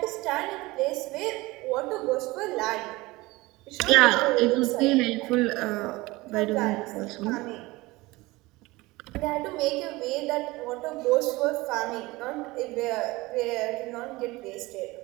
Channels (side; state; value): left; quieter; 21.2 dB